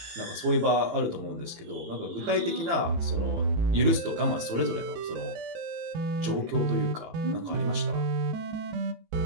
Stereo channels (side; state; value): left; late; 18 ms